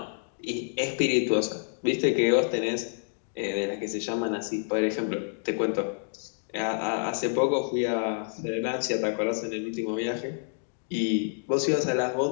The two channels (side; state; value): right; silent; 59 dB below the other